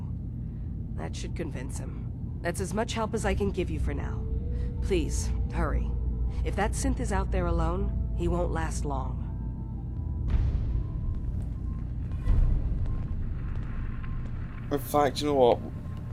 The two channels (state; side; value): identical; both; correlation 1.00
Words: That should convince him. That's as much help as I can give you for now. Please, hurry. If that synth is out there alone, he won't last long. In fact, you know what?